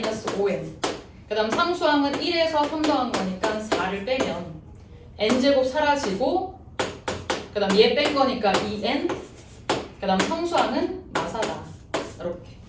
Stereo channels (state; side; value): identical; both; correlation 1.00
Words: 5n 그 다음 상수항은 1에서 3 더한 거니까 4를 빼면 n제곱 사라지고 그 다음 얘 뺀 거니까 2n 그 다음 상수항은 마사다. 이렇게